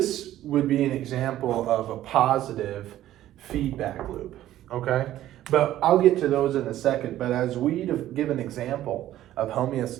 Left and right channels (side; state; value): left; quieter; 13.4 dB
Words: would be an example of a positive feedback loop, okay? But I'll get to those in a second, but as we give an example of